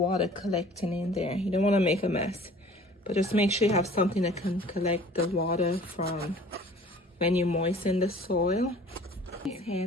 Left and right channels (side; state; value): both; normal; correlation 0.49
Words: collecting in there. You don't want to make a mess, but just make sure you have something that can collect the water from when you moisten the soil. Here